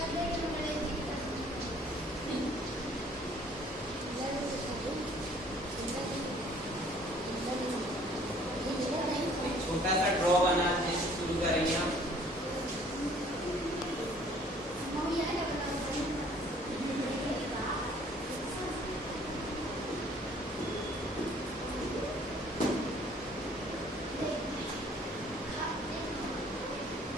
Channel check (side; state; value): both; normal; correlation 0.57